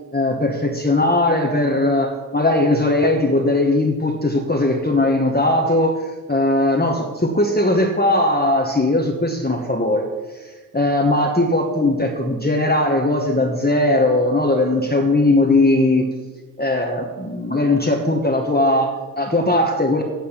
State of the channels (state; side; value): normal; both; correlation 0.27